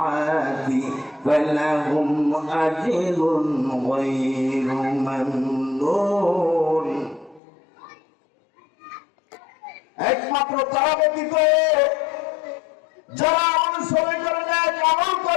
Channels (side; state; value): right; drops out; at 7.4 s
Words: ফালাহুম আজরুন গায়রু মামনুন। একমাত্র তারা ব্যতীত যারা অনুসরণ করে নেয়, আমল